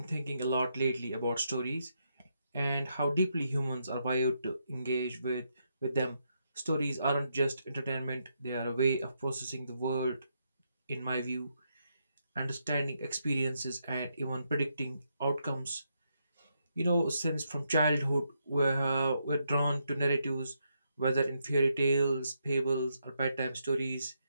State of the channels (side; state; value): both; inverted; correlation -0.80